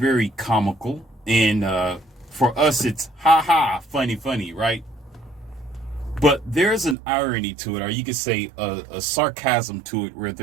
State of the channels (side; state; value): left; drops out; at 7.0 s